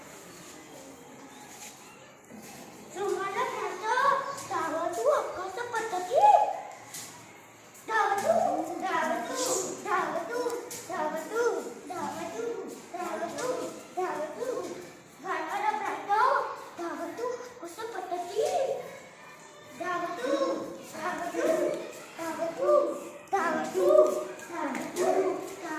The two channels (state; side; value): identical; both; correlation 1.00